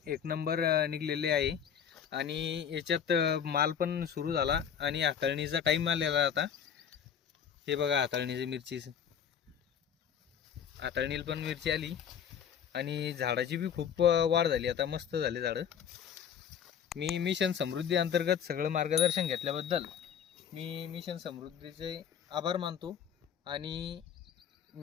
एक नंबर निघलेले आहे आणि याच्यात माल पण सुरू झाला आणि हाताळणीचा टाईम आलेला आता. हे बघा हाताळणीची मिरचीच, हाताळणीला पण मिरची आली आणि झाडाची बी खूप वाढ झाली, आता मस्त झाले झाडं. मी मिशन समृद्धी अंतर्गत सगळं मार्गदर्शन घेतल्याबद्दल मी मिशन समृद्धीचे आभार मानतो आणि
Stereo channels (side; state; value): right; quieter; 8.2 dB